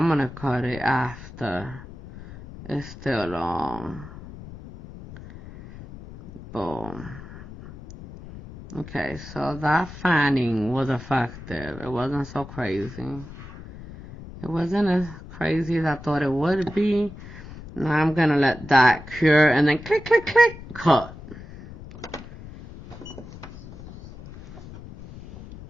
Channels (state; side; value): noise; left; rumble, 15 dB below the sound